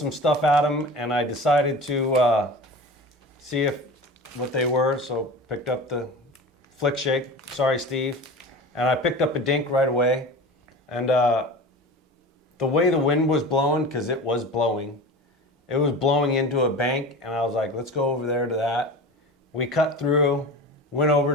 stuff at them, and I decided to see what they were. So picked up the flick shake. Sorry, Steve. And I picked up a dink right away, and the way the wind was blowing, because it was blowing into a bank, and I was like, let's go over there to that. We cut through, went over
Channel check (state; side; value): normal; both; correlation 0.33